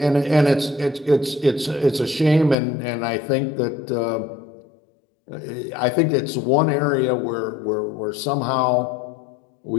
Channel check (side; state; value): right; drops out; at 2.6 s